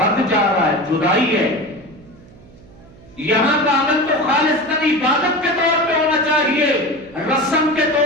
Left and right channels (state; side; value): noise; right; hum, 24 dB below the sound